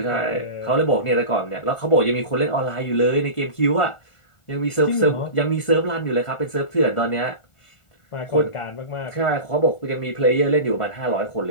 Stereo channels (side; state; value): right; late; 1.4 ms